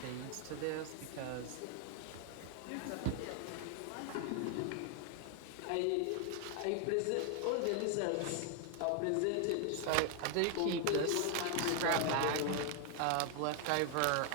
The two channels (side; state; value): both; different; correlation 0.00